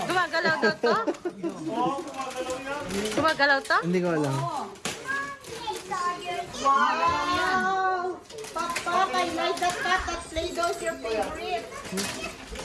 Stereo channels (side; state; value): both; identical; correlation 1.00